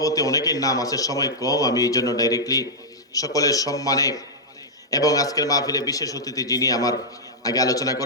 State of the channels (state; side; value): normal; both; correlation -0.07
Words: অনেকের নাম আছে, সময় কম, আমি এই জন্য ডাইরেক্টলি সকলের সম্মানে এবং আজকের মাহফিলে বিশেষ অতিথি যিনি আমার আগে আলোচনা